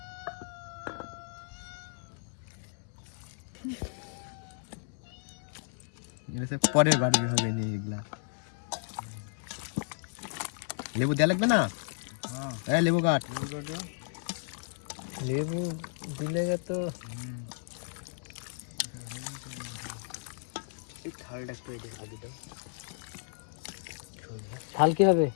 পরের বাড়ি হবে নি এগুলা লেবু দেয়া লাগবে না হ্যাঁ লেবু কাট লেবু দিলে তো ঝাল কি হবে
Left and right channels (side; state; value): right; silent; digital silence